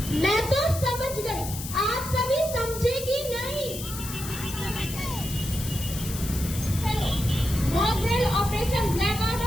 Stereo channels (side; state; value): left; noise; hiss, 9 dB below the sound